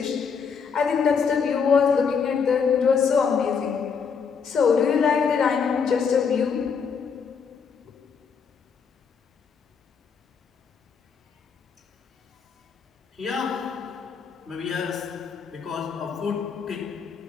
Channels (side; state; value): right; quieter; 6.2 dB